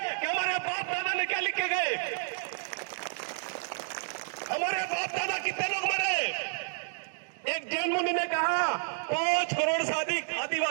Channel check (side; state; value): left; silent; digital silence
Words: कि हमारे बाप दादा ने क्या लिख के गए, हमारे बाप दादा कितने लोग मरे। एक जैन मुनि ने कहा 5 करोड़ से अधिक